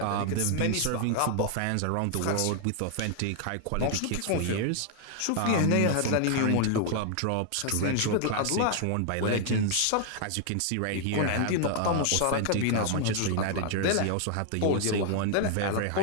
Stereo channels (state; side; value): different; both; correlation 0.00